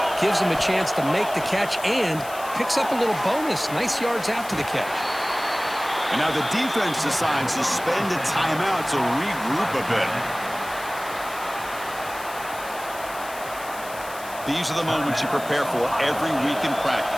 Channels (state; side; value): noise; left; hiss, 15 dB below the sound